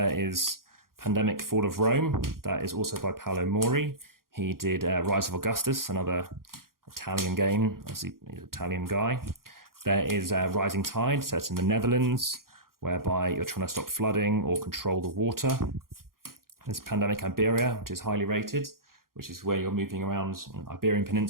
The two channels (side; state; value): left; late; 0.92 ms